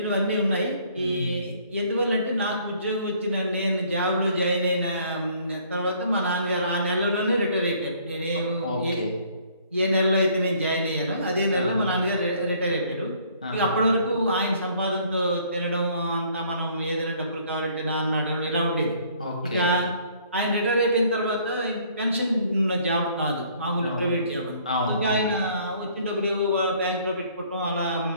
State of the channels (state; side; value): inverted; both; correlation -0.60